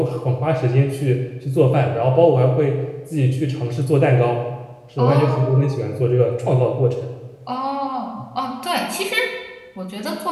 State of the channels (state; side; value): identical; both; correlation 1.00